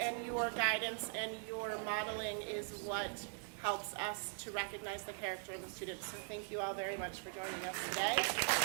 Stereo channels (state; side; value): silent; left; 50 dB below the other